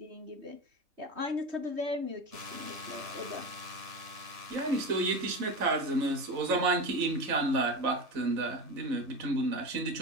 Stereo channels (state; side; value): late; left; 3.4 ms